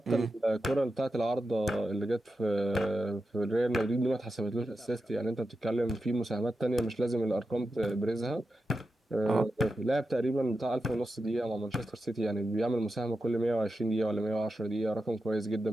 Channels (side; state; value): both; normal; correlation 0.90